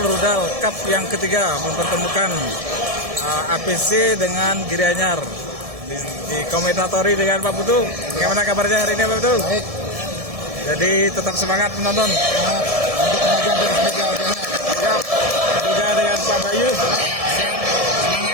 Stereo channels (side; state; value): left; late; 1.7 ms